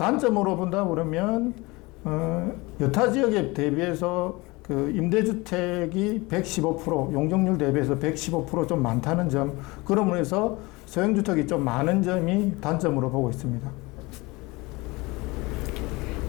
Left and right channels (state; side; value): quieter; right; 23.7 dB